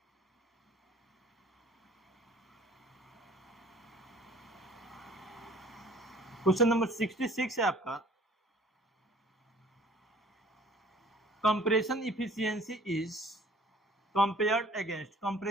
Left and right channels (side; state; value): both; normal; correlation 0.52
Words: क्वेश्चन नंबर 66 है आपका, compression efficiency is compared against,